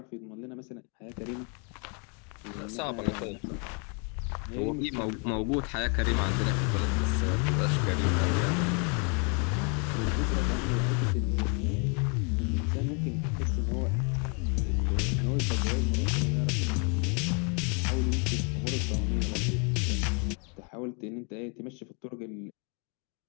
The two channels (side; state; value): right; quieter; 36.4 dB